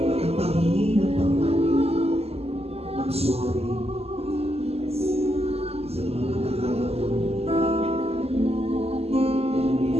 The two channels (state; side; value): late; left; 0.29 ms